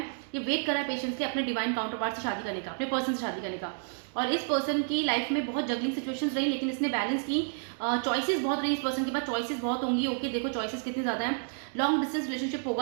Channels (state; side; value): silent; left; 58 dB below the other